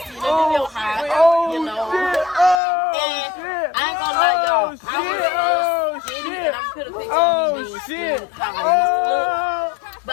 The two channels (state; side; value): drops out; right; at 2.6 s